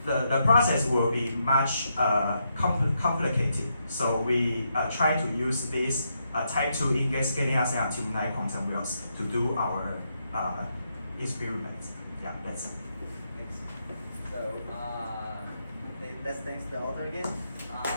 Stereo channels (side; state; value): both; inverted; correlation -0.80